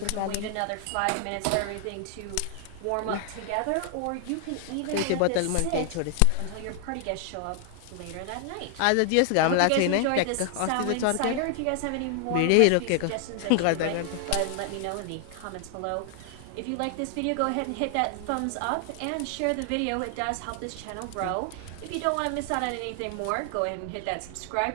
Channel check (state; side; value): different; both; correlation 0.00